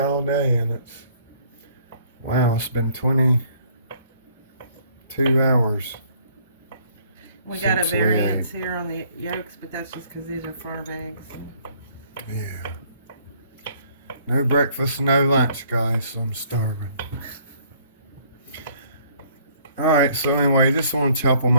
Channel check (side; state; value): both; inverted; correlation -0.61